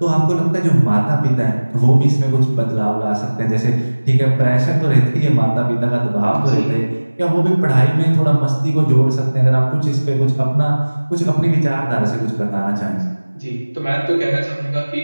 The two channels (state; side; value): inverted; both; correlation -1.00